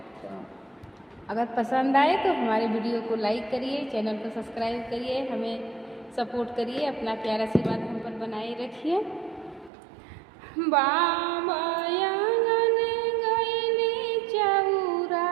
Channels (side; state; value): left; drops out; at 9.7 s